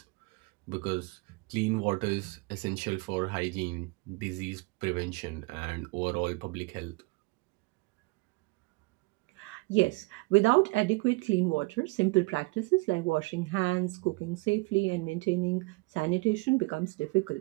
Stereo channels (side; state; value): left; quieter; 26.2 dB